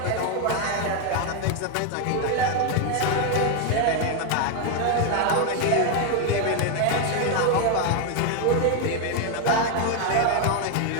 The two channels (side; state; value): both; different; correlation 0.01